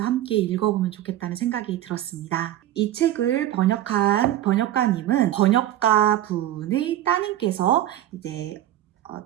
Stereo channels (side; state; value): left; quieter; 12.9 dB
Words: 함께 읽어보면 좋겠다는 생각이 들었습니다. 이 책을 번역한 번역가님은 번역가 분의 따님께서